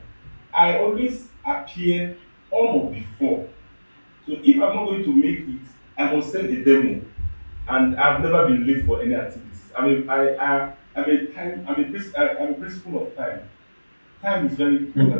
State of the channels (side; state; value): both; inverted; correlation -1.00